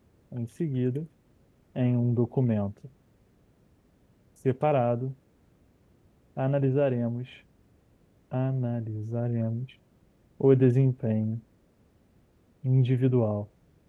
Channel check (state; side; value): identical; both; correlation 1.00